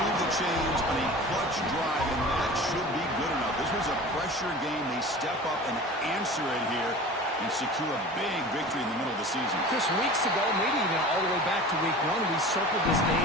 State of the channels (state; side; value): normal; both; correlation 0.38